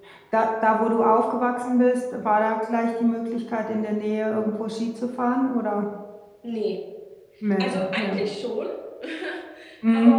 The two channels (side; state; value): both; identical; correlation 1.00